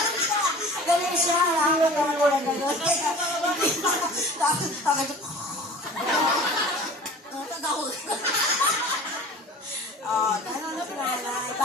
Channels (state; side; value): normal; both; correlation 0.43